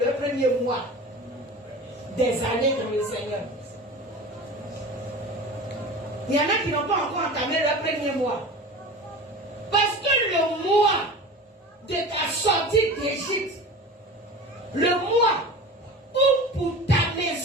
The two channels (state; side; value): normal; both; correlation 0.34